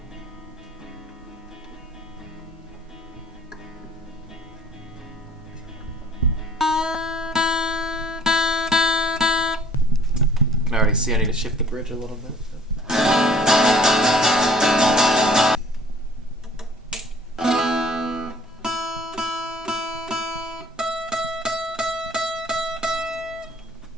I already see I need to shift the bridge a little bit.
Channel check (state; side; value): normal; both; correlation 0.53